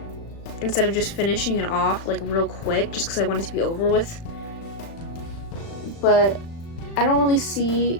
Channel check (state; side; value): late; right; 36 ms